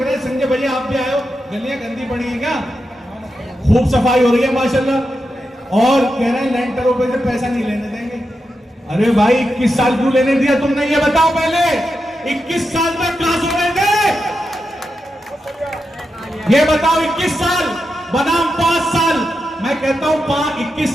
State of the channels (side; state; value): both; normal; correlation 0.88